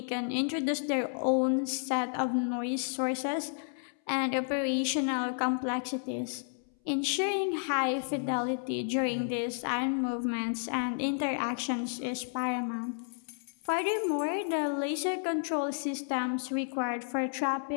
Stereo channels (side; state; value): right; silent; 57 dB below the other